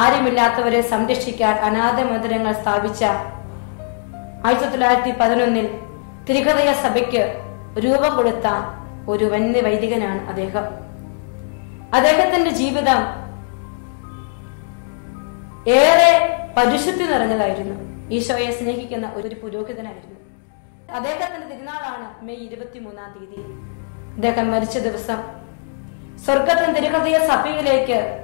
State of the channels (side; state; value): right; silent; 66 dB below the other